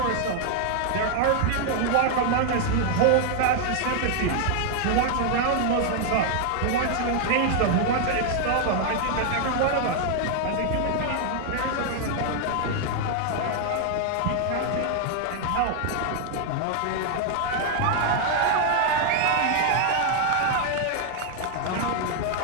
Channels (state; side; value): different; both; correlation 0.00